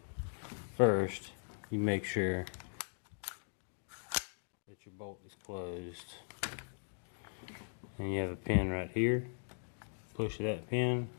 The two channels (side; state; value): right; silent; digital silence